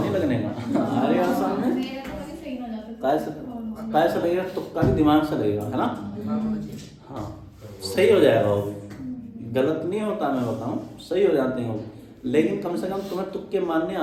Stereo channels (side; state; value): both; identical; correlation 1.00